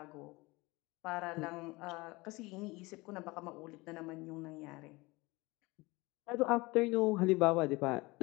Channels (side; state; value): right; quieter; 23.3 dB